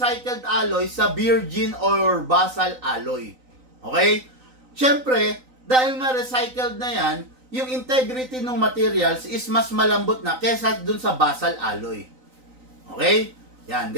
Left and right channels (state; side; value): late; left; 3.9 ms